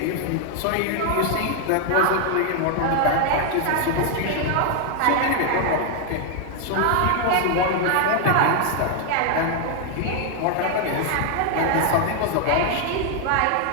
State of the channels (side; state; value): both; different; correlation 0.00